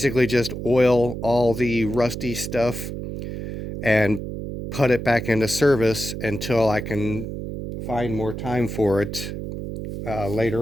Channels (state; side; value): noise; right; hum, 7 dB below the sound